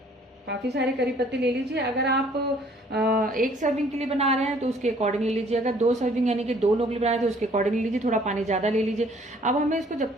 काफ़ी सारे करी पत्ते ले लीजिए। अगर आप एक सर्विंग के लिए बना रहे हैं तो उसके अकॉर्डिंग ले लीजिए। अगर 2 सर्विंग यानी कि 2 लोग बना रहे हैं तो उसके अकॉर्डिंग ले लीजिए। थोड़ा पानी ज़्यादा ले लीजिए। अब हमें इसको जब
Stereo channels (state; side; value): normal; both; correlation 0.59